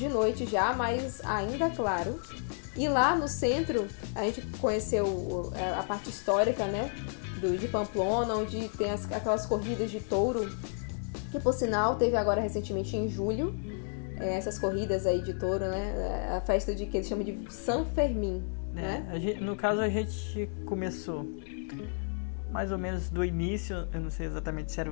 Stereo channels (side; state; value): right; silent; 57 dB below the other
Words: noite já, mas ainda claro. E lá no centro, a gente conheceu a parte histórica, né? De Pamplona, onde tem aquelas corridas de touro, que por sinal teve agora recentemente em julho, essas corridas aí de touro, né? A festa que eles chamam de San Fermín, né? No caso a gente começou mais ou menos do início, eu não sei exatamente se era